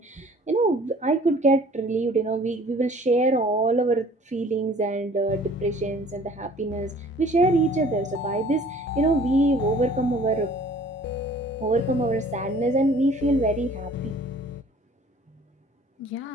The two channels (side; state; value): both; normal; correlation 0.52